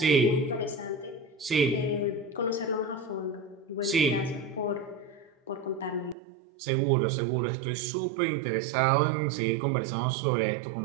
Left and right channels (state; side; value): drops out; left; at 6.2 s